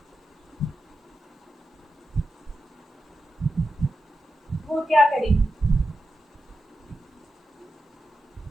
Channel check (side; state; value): both; normal; correlation 0.90